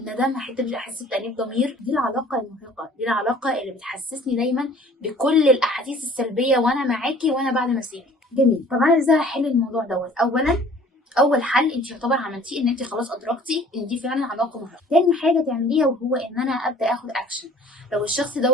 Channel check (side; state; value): both; normal; correlation 0.51